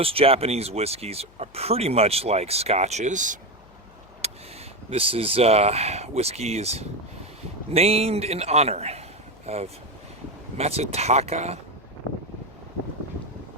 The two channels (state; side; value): noise; left; hum, 26 dB below the sound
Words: Japanese whiskeys are pretty much like scotches. This is whiskey is named in honor of Masataka